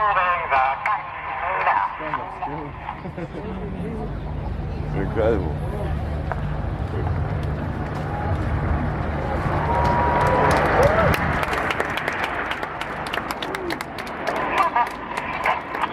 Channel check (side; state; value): both; identical; correlation 1.00